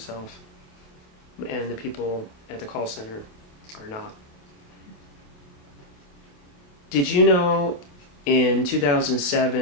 And the people at the call center are not. Did you know in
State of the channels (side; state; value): right; late; 27 ms